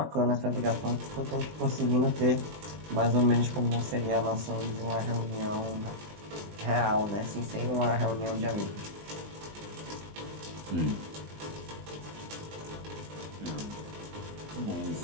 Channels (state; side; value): late; left; 20 ms